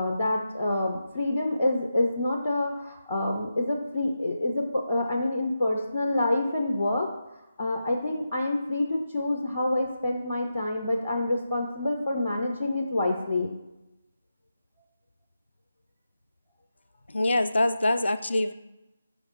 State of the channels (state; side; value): inverted; both; correlation -0.88